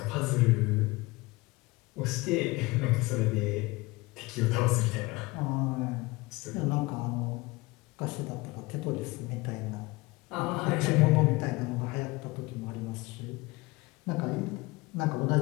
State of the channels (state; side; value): quieter; right; 22.4 dB